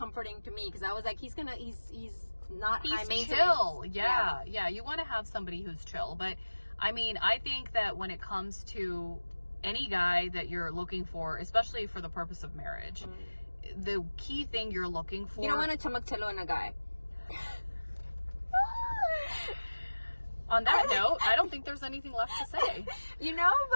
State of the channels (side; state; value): both; inverted; correlation -1.00